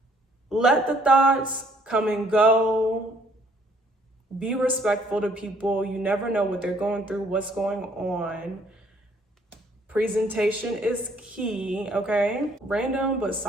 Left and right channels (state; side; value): normal; both; correlation 0.63